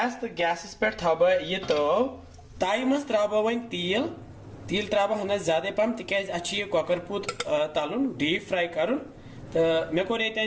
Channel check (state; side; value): identical; both; correlation 1.00